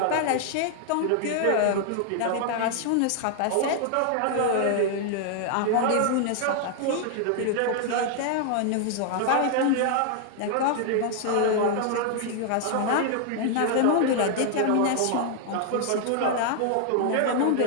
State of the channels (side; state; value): both; different; correlation 0.00